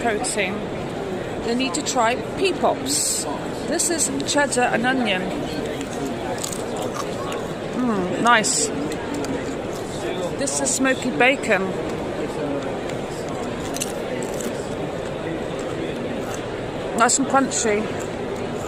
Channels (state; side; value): identical; both; correlation 1.00